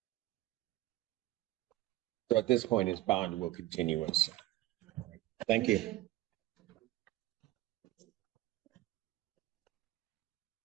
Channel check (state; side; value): quieter; left; 16.2 dB